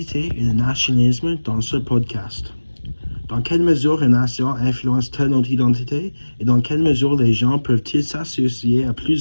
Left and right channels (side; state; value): both; inverted; correlation -1.00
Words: et le nationalisme dans ce podcast. Dans quelle mesure une nation influence-t-elle notre identité et dans quelle mesure les gens peuvent-ils s'associer à